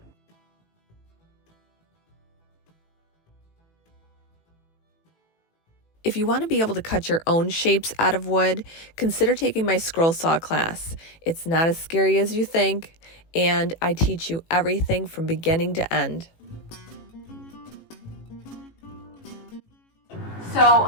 If you want to be able to cut your own shapes out of wood, consider taking my scroll saw class. It's not as scary as you think, and I teach you everything from beginning to end. So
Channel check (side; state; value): right; late; 18 ms